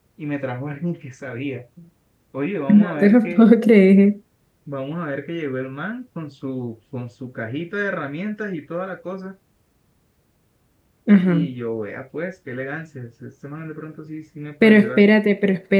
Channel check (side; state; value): both; identical; correlation 1.00